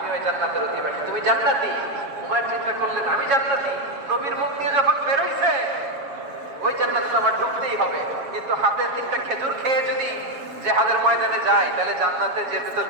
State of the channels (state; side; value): late; left; 7.2 ms